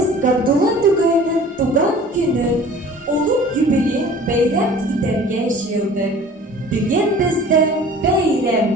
Gabdullah Tugay'ın tugan günü, ulug yubiley bayram iterge şiirdik. Bugün bizde bayram.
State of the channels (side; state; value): both; normal; correlation 0.46